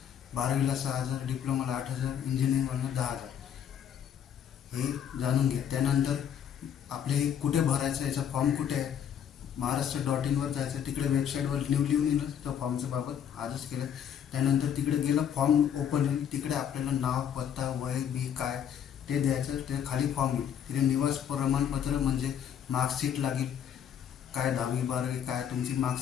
12वीला 6,000, डिप्लोमाला 8,000, इंजिनिअरिंगला 10,000। हे जाणून घ्या। त्यानंतर आपले कुठे भरायचं, याचा फॉर्म कुठे आहे? महाराष्ट्र.in वर जायचं, तिकडे वेबसाईटवर लिहून येईल तो फॉर्मच्या बाबत आजच केलं। त्यानंतर तिकडे गेलं, फॉर्म ओपन होईल, तिकडे आपल्याला नाव, पत्ता, वय बी काय ते द्यायचं। ते खाली फॉर्म येईल, तिथे निवास प्रमाणपत्र म्हणजे मार्कशीट लागेल, काय 10वी 12वी काय तुमची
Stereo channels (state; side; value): quieter; right; 8.9 dB